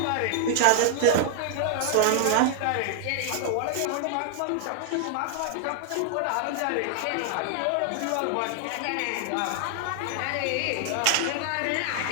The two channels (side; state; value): both; different; correlation 0.00